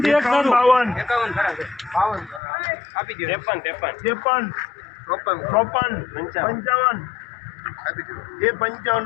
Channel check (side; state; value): right; drops out; at 2.4 s